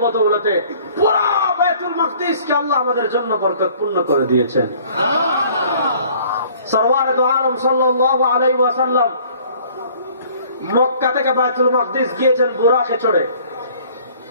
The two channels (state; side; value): inverted; both; correlation -0.54